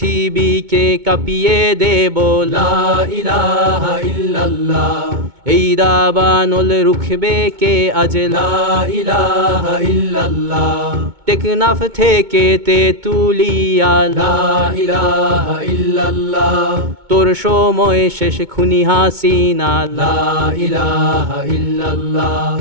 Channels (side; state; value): left; late; 2.2 ms